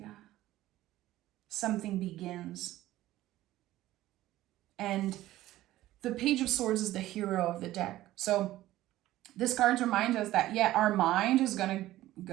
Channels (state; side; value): quieter; left; 15.3 dB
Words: Something begins. And the Page of Swords is the hero of the deck. So this card reminds us that, yeah, our mind is going to